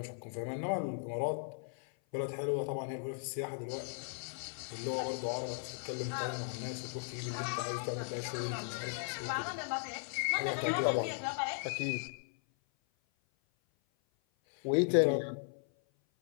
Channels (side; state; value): right; silent; 53 dB below the other